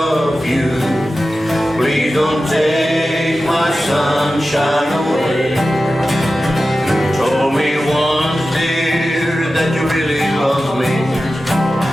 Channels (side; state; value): both; normal; correlation 0.94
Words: you. Please don't take my sunshine away. You told me once, dear, that you really love me,